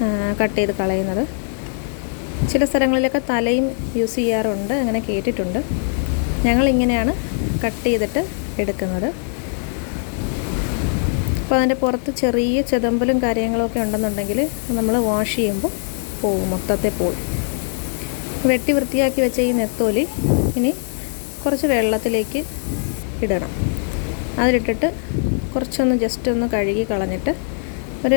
കട്ട് ചെയ്ത് കളയുന്നത്. ചില സ്ഥലങ്ങളിലൊക്കെ തലയും യൂസ് ചെയ്യാറുണ്ട്, അങ്ങനെ കേട്ടിട്ടുണ്ട്. ഞങ്ങളിങ്ങനെയാണ് കട്ട് ചെയ്തിട്ട് എടുക്കുന്നത്. അപ്പോൾ അതിൻ്റെ പുറത്ത് ചെറിയ ചെതമ്പലും കാര്യങ്ങളൊക്കെ ഉണ്ടെന്നുണ്ടെങ്കിൽ നമ്മൾ വാഷ് ചെയ്യുമ്പോൾ പോവും, മൊത്തത്തിൽ പോവും. വെട്ടി വൃത്തിയാക്കി വെച്ച ഈ നെത്തോലി ഇനി കുറച്ച് വെള്ളത്തിലേക്ക് ഇടണം. അതിലിട്ടിട്ട് കുറച്ചൊന്ന് ജസ്റ്റ് ഒന്ന് കഴുകി കളഞ്ഞിട്ട് ഒരു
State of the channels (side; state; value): right; silent; digital silence